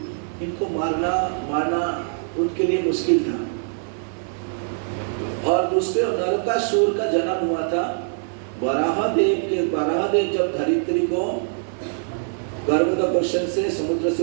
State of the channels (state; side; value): silent; left; digital silence